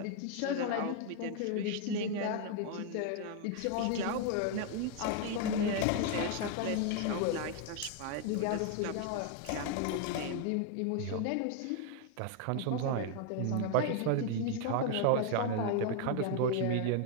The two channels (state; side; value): different; both; correlation 0.01